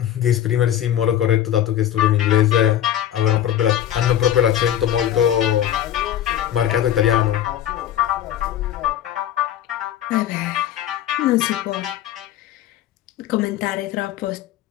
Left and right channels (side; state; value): right; quieter; 11.2 dB